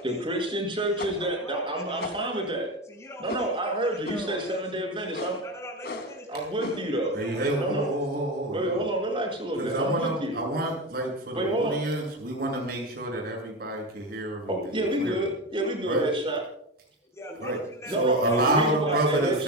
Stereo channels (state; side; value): normal; both; correlation 0.21